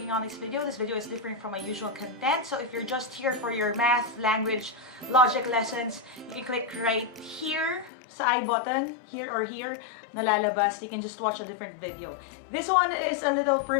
on this video. This video is different from my usual content. So if you're just here for your math, language, logic lessons, you can click right here sa I button, here or here, nalalabas. You can just watch a different video. This one is a little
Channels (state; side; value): drops out; right; at 7.9 s